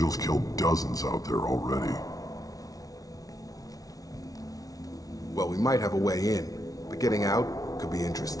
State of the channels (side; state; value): right; late; 0.18 ms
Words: killed dozens out there already. Well, we might have a way in, but getting out could be